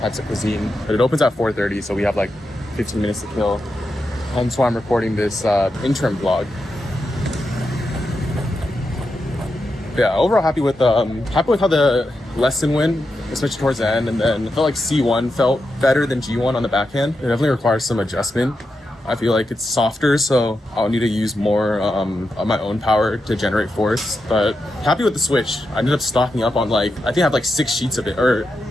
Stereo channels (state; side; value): normal; both; correlation 0.87